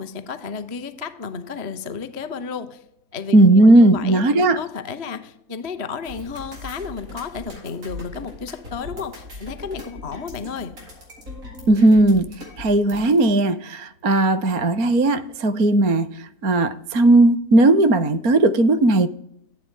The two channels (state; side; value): late; left; 4.2 ms